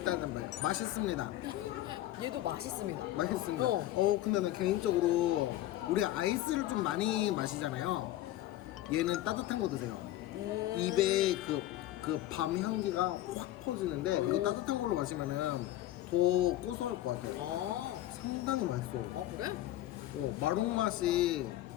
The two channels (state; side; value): quieter; right; 14.6 dB